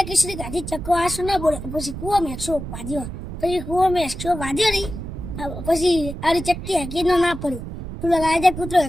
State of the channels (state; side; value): noise; right; rumble, 9 dB below the sound